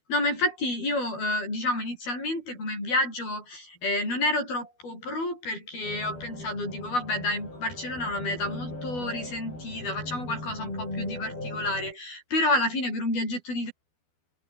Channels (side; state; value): right; late; 12 ms